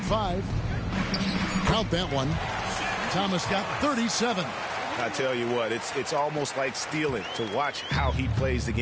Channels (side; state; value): both; identical; correlation 1.00